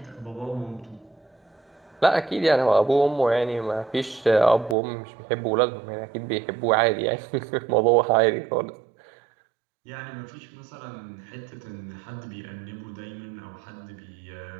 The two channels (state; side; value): drops out; left; at 4.8 s